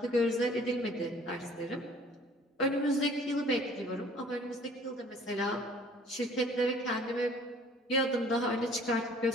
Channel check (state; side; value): normal; both; correlation 0.53